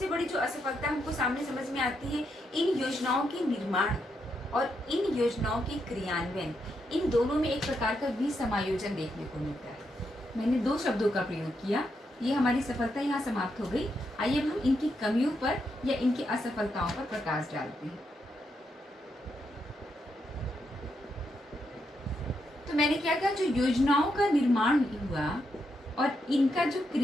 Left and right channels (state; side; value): normal; both; correlation 0.81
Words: बड़ी जो असफलता हमको सामने समझ में आती है, इन योजनाओं के निर्माण और इन योजनाओं के क्रियान्वयन, इन दोनों में एक प्रकार का विसमायोजन देखने को मिलता है। मैंने 2 शब्दों का प्रयोग किया, ये हमारी सफलता यहाँ समाप्त हो गई। आइए अब हम इनकी कमियों पर या इनकी असफलताओं पर प्रकाश डालते हैं। तो मैंने क्या कहा, जो योजनाओं का निर्माण हुआ और इनका जो